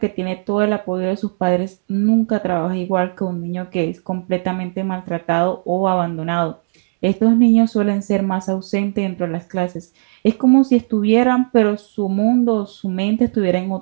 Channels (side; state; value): left; silent; digital silence